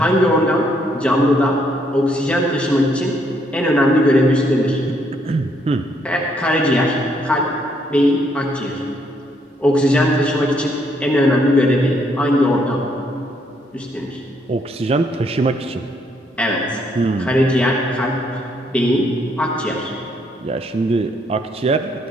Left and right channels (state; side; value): normal; both; correlation 0.71